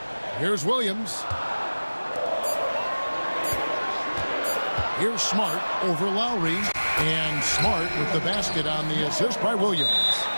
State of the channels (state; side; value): inverted; both; correlation -1.00